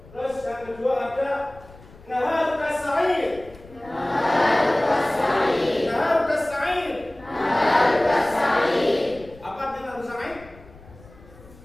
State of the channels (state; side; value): noise; left; rumble, 22 dB below the sound